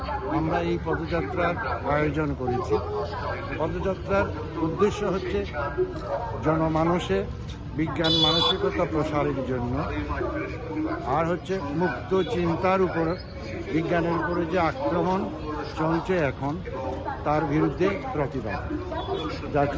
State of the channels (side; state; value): both; identical; correlation 1.00